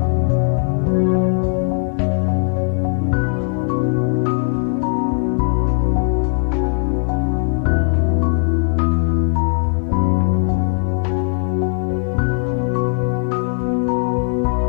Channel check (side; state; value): right; silent; 56 dB below the other